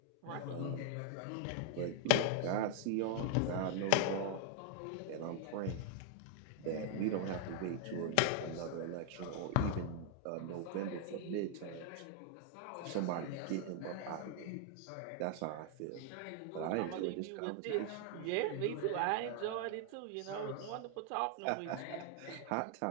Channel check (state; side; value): different; both; correlation 0.00